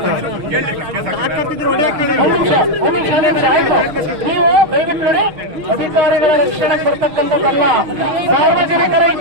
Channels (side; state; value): left; late; 6.5 ms